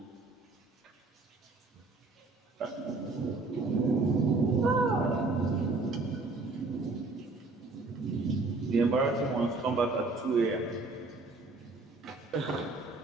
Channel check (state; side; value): quieter; left; 3.5 dB